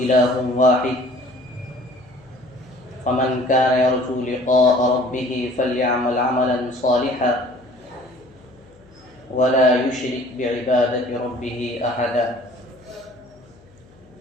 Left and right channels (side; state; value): left; noise; hum, 27 dB below the sound